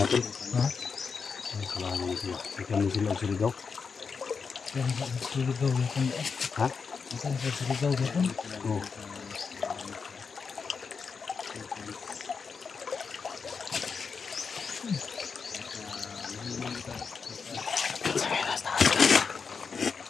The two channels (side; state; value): right; quieter; 5.5 dB